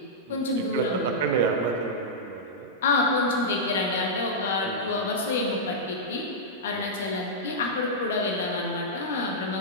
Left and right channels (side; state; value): both; normal; correlation -0.10